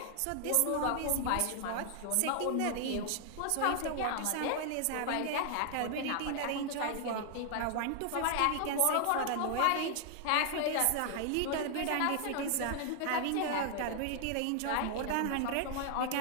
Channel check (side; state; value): both; different; correlation 0.00